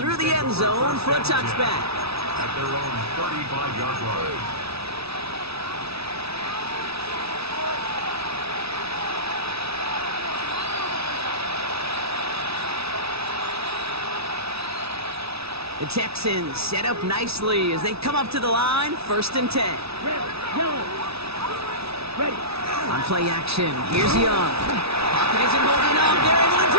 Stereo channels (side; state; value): left; late; 0.78 ms